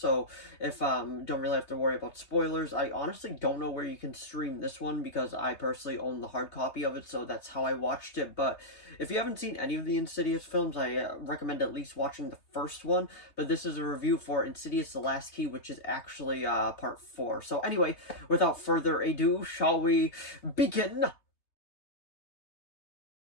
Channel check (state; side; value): late; right; 3.2 ms